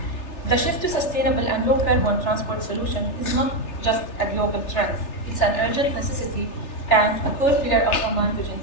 The shift to sustainable and low carbon transport solution is not just a global trend. It's an urgent necessity and a core pillar of Oman Vision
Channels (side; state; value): right; late; 3.3 ms